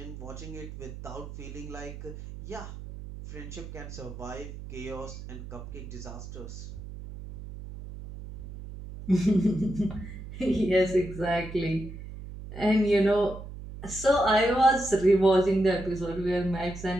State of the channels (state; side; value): noise; right; hum, 11 dB below the sound